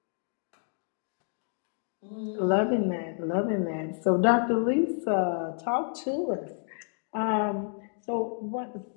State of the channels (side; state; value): right; silent; digital silence